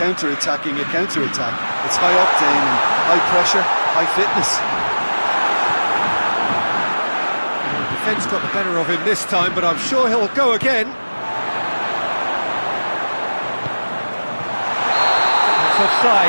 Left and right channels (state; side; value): inverted; both; correlation -1.00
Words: a counter-attack. It's high octane and high pressure, high fitness. The defence got the better of him this time, but I'm sure he'll go again. It's